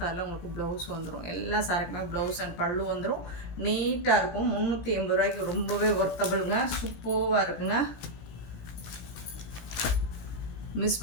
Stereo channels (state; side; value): late; right; 17 ms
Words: உங்களுக்கு ப்ளவுஸ் வந்துடும். எல்லா சாரிக்குமே ப்ளவுஸ் அண்ட் பல்லு வந்துடும். நீட்டாக இருக்கும். 380 ரூபாய்க்கு ரொம்பவே ஒர்த்தபிளுங்க, சூப்பராக இருக்குங்க. மிஸ்